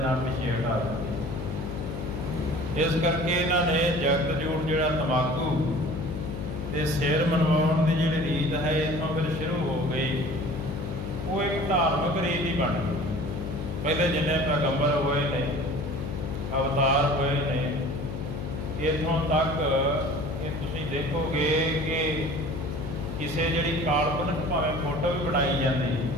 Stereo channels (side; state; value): left; noise; hum, 6 dB below the sound